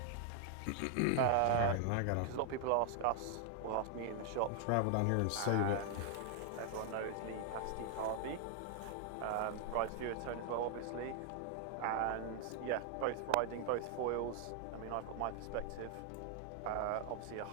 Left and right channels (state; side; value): different; both; correlation 0.00